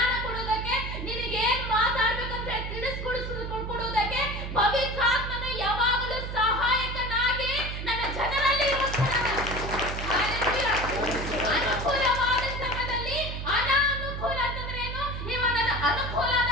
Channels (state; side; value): noise; right; hum, 6 dB below the sound